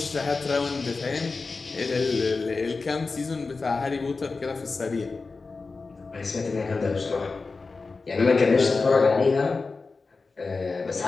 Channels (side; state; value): right; quieter; 4.1 dB